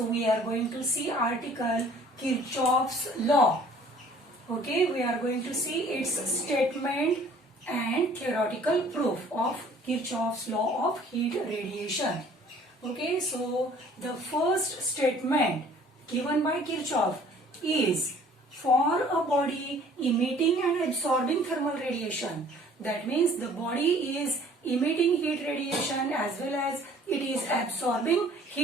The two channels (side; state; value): both; normal; correlation 0.54